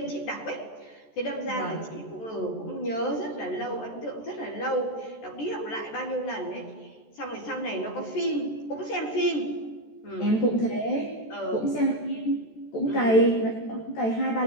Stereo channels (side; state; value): right; late; 14 ms